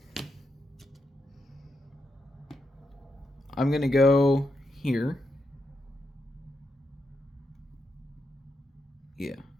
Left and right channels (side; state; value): both; normal; correlation 0.84